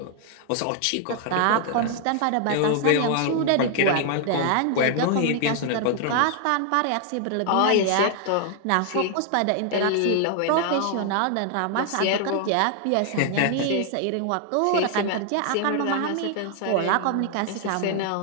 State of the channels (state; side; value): different; both; correlation 0.00